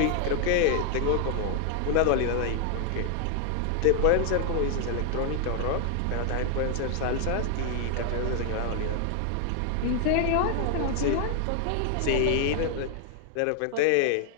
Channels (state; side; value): different; both; correlation 0.00